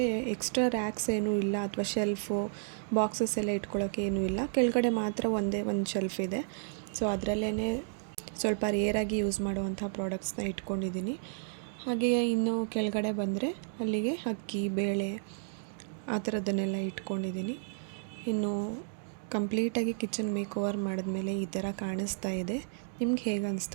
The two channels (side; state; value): left; silent; digital silence